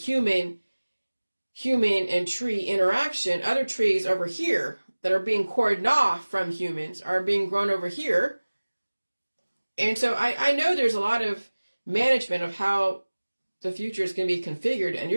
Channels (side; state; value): both; inverted; correlation -1.00